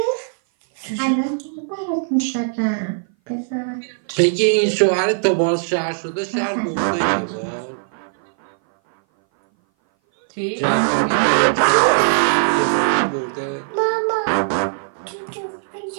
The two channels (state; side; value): silent; left; 59 dB below the other